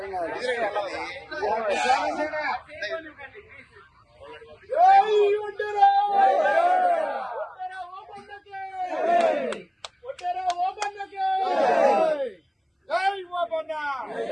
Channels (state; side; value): identical; both; correlation 1.00